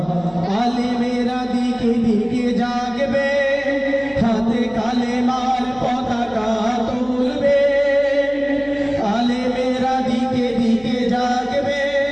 আলেমেরা দিকে দিকে জাগবে হাতে কালেমার পতাকা তুলবে আলেমেরা দিকে দিকে জাগবে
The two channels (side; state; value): right; noise; hum, 23 dB below the sound